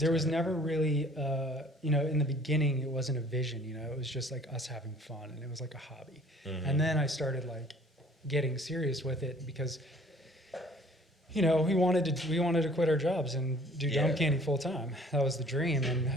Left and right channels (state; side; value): normal; both; correlation 0.54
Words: was never really, in the beginning, it wasn't a vision. It was just like us having fun, and it was like a hobby. And then I started like getting serious with it because. We wanted to quit our jobs and do Dome Candy full time. That was the dream, and